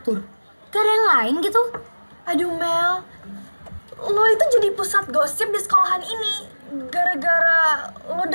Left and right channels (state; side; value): inverted; both; correlation -1.00